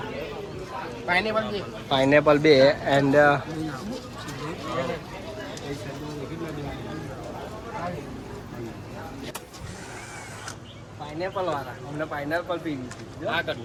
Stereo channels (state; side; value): identical; both; correlation 1.00